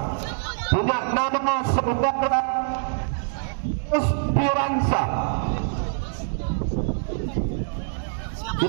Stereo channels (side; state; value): left; silent; digital silence